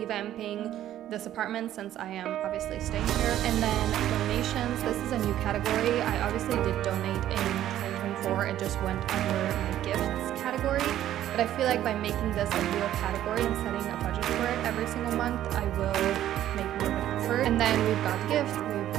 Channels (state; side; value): quieter; left; 12.3 dB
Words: this apartment since I am obviously staying here. And then donations. This is a new category. I obviously did donate in 2024. It just went under my gifts category. But I feel like by making this a real category and setting a budget for it every single month, I will make more of an effort. And then we've got gift, we've